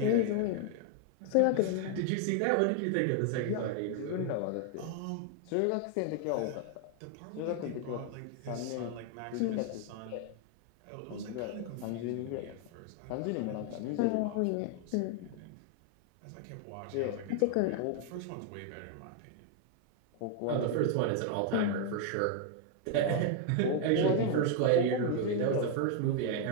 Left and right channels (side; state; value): both; different; correlation 0.00